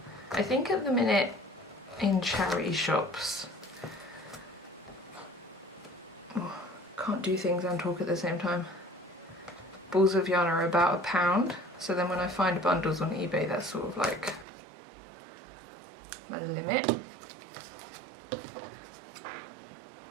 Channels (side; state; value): left; drops out; at 14.5 s